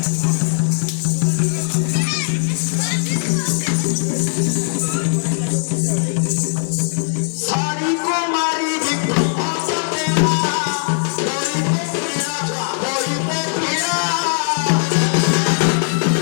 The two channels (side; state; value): right; silent; digital silence